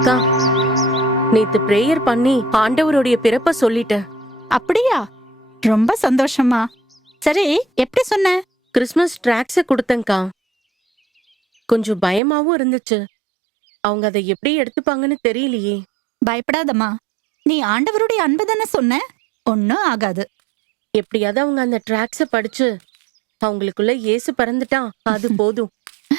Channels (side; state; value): left; drops out; at 12.2 s